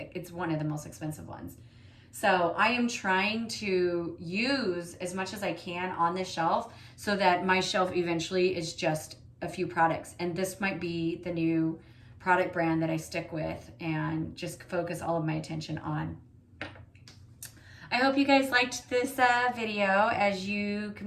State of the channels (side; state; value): both; identical; correlation 1.00